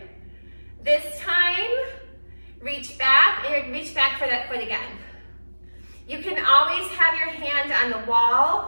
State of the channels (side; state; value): both; inverted; correlation -1.00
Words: This time, reach back, and reach back for that foot again. You can always have your hand on the